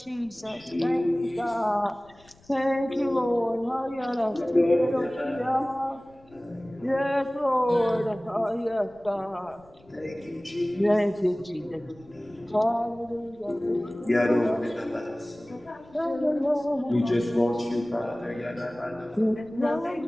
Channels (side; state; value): left; noise; rumble, 28 dB below the sound